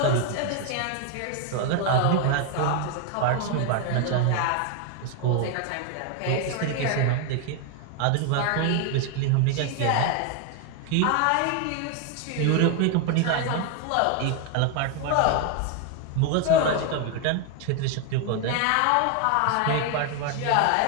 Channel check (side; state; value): both; different; correlation 0.01